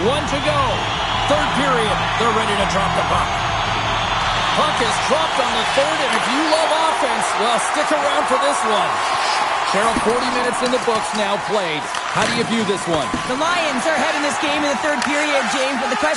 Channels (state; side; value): identical; both; correlation 1.00